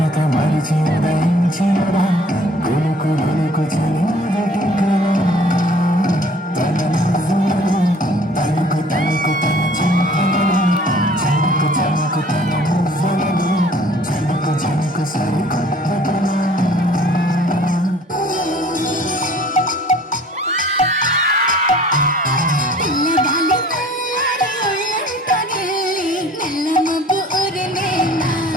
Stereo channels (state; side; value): normal; both; correlation 0.53